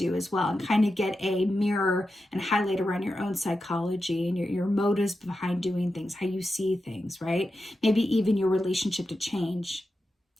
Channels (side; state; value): both; normal; correlation 0.90